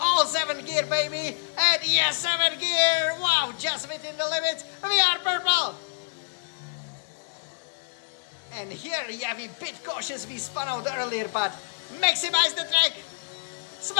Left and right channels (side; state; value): right; silent; digital silence